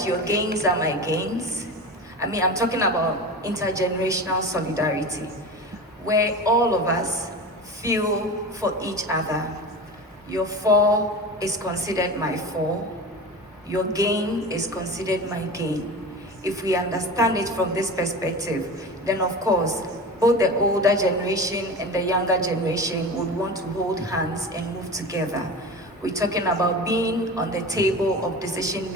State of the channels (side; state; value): both; normal; correlation 0.30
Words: your gains are my gains. I mean, I'm talking about intergenerational solidarity, where all of us feel for each other. Your fall is considered my fall. Your gain is considered my gain. If we understand it from this perspective, then of course, both the older generation and the younger generation would want to hold hands and move together. We're talking about being on the table of decision